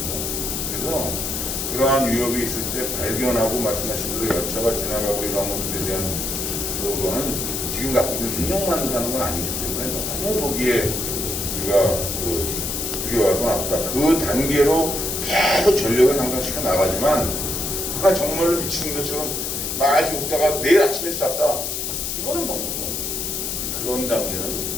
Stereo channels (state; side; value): noise; left; hiss, 2 dB below the sound